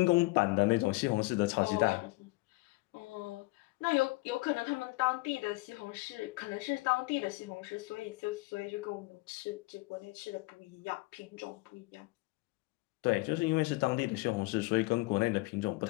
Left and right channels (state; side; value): quieter; right; 23.3 dB